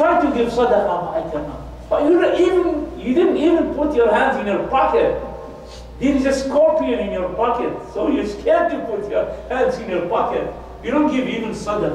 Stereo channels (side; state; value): both; identical; correlation 1.00